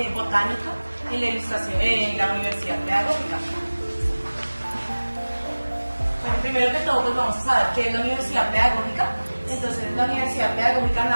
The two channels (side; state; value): both; inverted; correlation -1.00